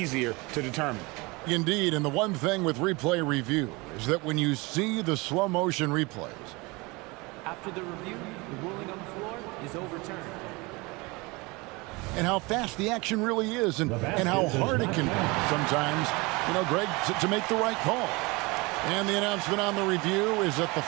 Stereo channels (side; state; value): left; quieter; 25.1 dB